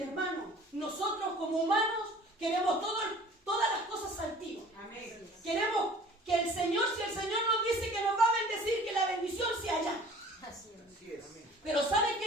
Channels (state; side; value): normal; both; correlation 0.48